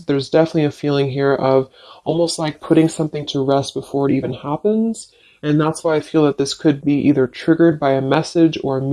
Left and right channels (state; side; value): identical; both; correlation 1.00